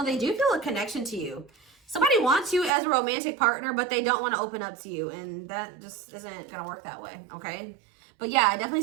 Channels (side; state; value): left; drops out; at 2.7 s